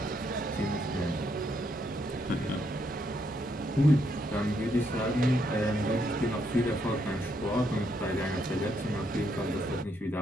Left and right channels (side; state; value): both; normal; correlation 0.75